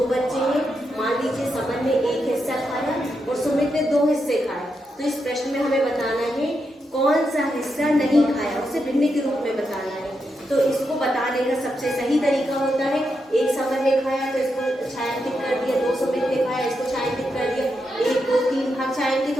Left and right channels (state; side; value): normal; both; correlation 0.84